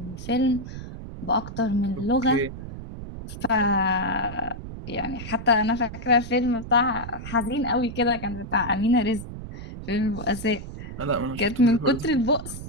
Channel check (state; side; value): noise; right; rumble, 10 dB below the sound